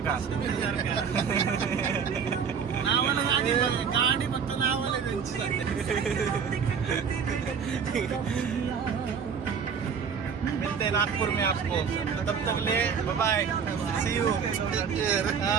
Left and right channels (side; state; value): left; quieter; 6.6 dB